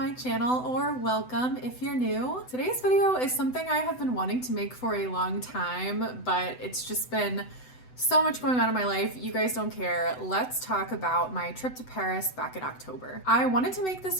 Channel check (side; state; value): right; late; 7.9 ms